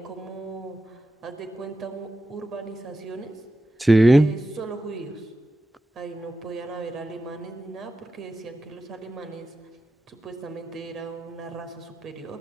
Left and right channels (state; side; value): normal; both; correlation 0.91